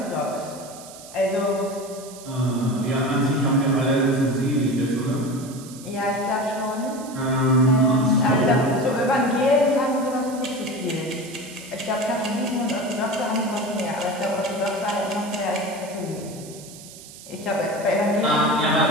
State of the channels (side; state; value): right; noise; hiss, 17 dB below the sound